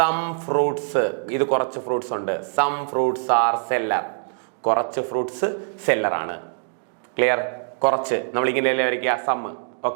ഫ്രൂട്ട്സ്, ഇത് കുറച്ച് ഫ്രൂട്ട്സ് ഉണ്ട്, സം ഫ്രൂട്ട്സ് ആർ സെല്ലർ, കുറച്ച് ഫ്രൂട്ട്സ് സെല്ലറാണ്. ക്ലിയർ? കുറച്ച് നമ്മൾ ഇങ്ങനെയല്ലേ വരയ്ക്കുക, സം.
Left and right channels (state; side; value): silent; left; digital silence